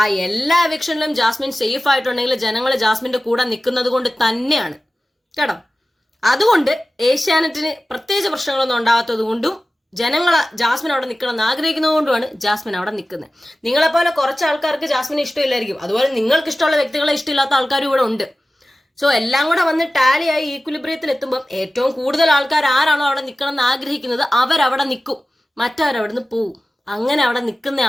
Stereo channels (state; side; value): normal; both; correlation 0.96